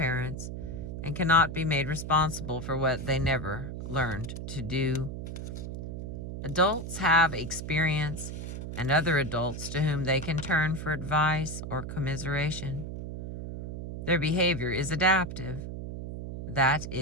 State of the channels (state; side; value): noise; right; hum, 7 dB below the sound